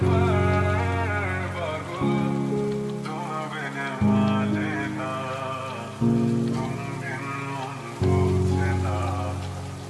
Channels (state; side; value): identical; both; correlation 1.00